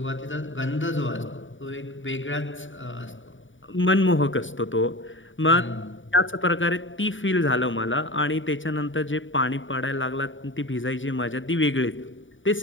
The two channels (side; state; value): right; late; 0.56 ms